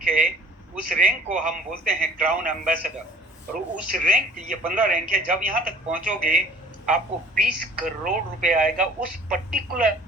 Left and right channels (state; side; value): normal; both; correlation 0.50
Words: है, उस रैंक को हम बोलते हैं क्राउन एम्बेसडर, और उस रैंक, ये 15 रैंक है, जब यहाँ तक पहुंचोगे आपको 20 करोड़ रुपए आएगा उस पर्टिकुलर